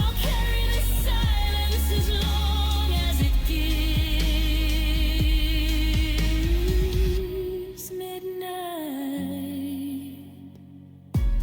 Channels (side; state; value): both; identical; correlation 1.00